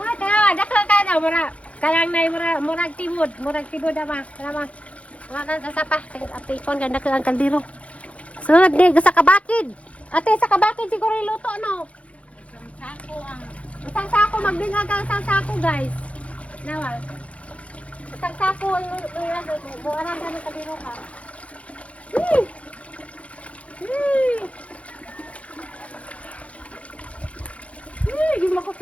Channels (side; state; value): right; late; 0.064 ms